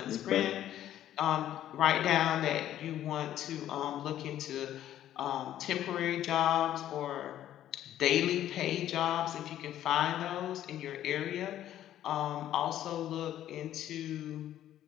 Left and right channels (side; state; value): right; quieter; 12.0 dB